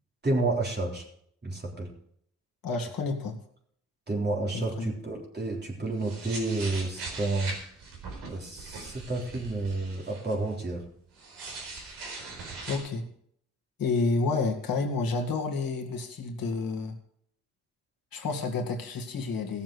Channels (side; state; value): both; normal; correlation 0.53